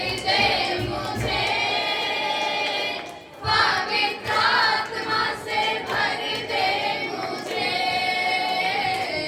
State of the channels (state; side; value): identical; both; correlation 1.00